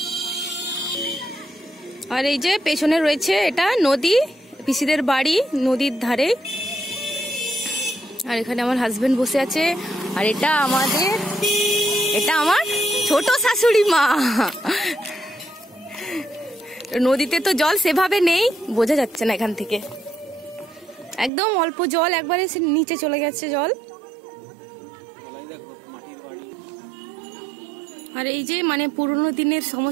আর এই যে পেছনে রয়েছে এটা নদী, পিসিদের বাড়ি নদীর ধারে। আর এখানে আমার হাজবেন্ড বসে আছে। আর এটা আমার ছোট শাশুড়ি মা। নদীতে তো জল সেভাবে নেই, বোঝা যাচ্ছে না এখান থেকে, একদম অল্প জল, একবারে নিচে চলে গেছে জল। আর এই যে মানে পুরোনো দিনের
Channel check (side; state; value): left; drops out; at 21.3 s